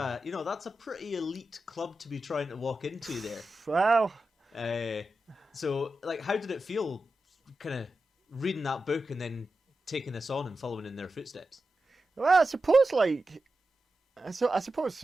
pretty elite club to be trying to walk into there. Wow. So like, how did it feel, kind of reading that book and then taking this on and following in their footsteps? Well, I suppose I suppose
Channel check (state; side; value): normal; both; correlation 0.91